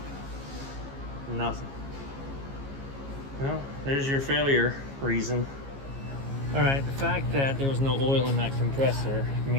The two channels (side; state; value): left; late; 15 ms